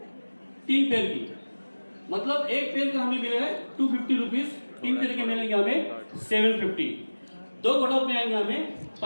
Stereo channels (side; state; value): both; inverted; correlation -1.00